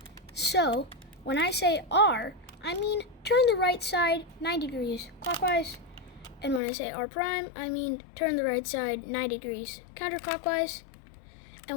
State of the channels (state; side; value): drops out; right; at 6.6 s